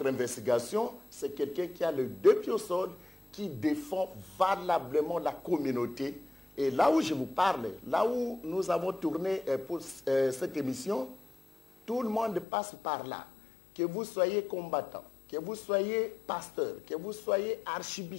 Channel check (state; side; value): drops out; right; at 12.5 s